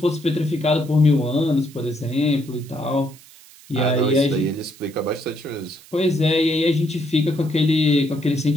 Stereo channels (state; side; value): noise; right; hiss, 23 dB below the sound